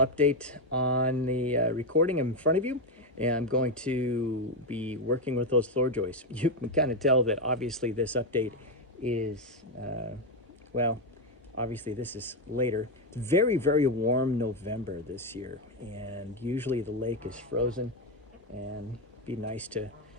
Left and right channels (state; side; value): normal; both; correlation 0.07